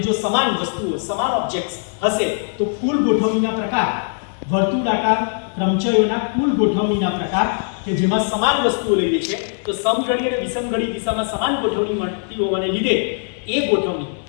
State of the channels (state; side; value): silent; right; 63 dB below the other